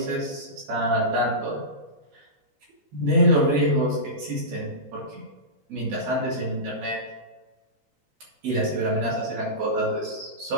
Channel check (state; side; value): late; left; 3.9 ms